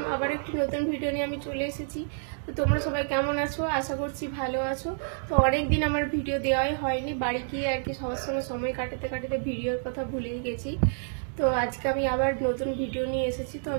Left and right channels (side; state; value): left; silent; digital silence